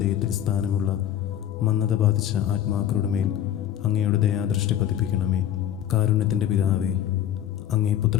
സ്ഥാനമുള്ള മന്ദത ബാധിച്ച ആത്മാക്കളുടെ മേൽ അങ്ങയുടെ ദയാദൃഷ്ടി പതിപ്പിക്കണമേ. കാരുണ്യത്തിൻ്റെ പിതാവേ, അങ്ങേ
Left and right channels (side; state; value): right; quieter; 10.7 dB